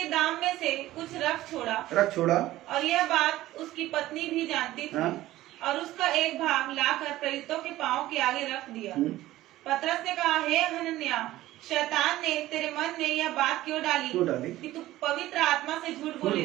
दाम में से कुछ रख छोड़ा, और यह बात उसकी पत्नी भी जानती थी, हाँ, और उसका एक भाग लाकर प्रेरितों के पांव के आगे रख दिया। पतरस ने कहा, हे हनन्याह, शैतान ने तेरे मन में यह बात क्यों डाली कि तू पवित्र आत्मा से झूठ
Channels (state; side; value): quieter; left; 15.8 dB